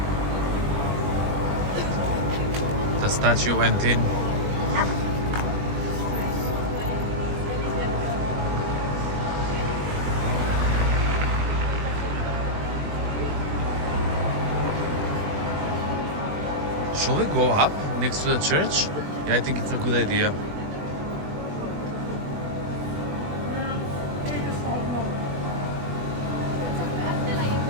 The statue went in. Shall we go up next to the church? Yeah, I think it's a good idea.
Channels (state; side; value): late; left; 20 ms